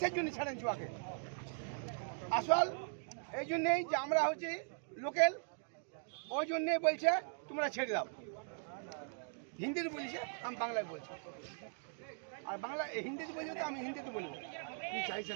জন্য ছাড়ে দিচ্ছে ওকে? আসল এই জন্যেই যে আমরা হচ্ছি লোকেল, ওই জন্যেই বলছে তোমরা ছেড়ে দাও। হিন্দিতে বলছে, আমি বাংলায় বলছি। আর বাংলা হিন্দিতে বলছে তো আমি হিন্দিতে বলবো। কি চাইছেন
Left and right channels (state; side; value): silent; left; digital silence